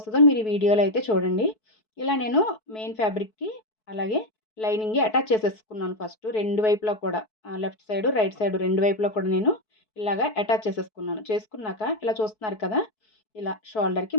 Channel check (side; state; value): right; late; 4.6 ms